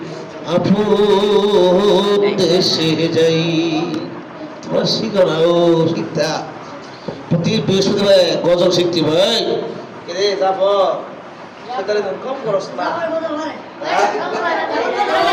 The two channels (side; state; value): both; identical; correlation 1.00